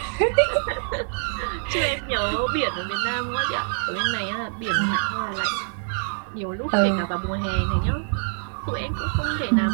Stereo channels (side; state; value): left; silent; 62 dB below the other